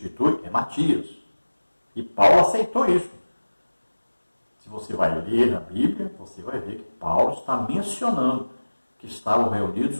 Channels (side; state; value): both; inverted; correlation -1.00